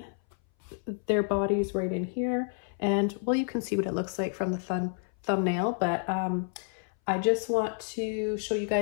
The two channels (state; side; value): silent; right; 58 dB below the other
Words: their bodies right in here. And well, you can see what it looks like from the thumbnail, but I just want to show you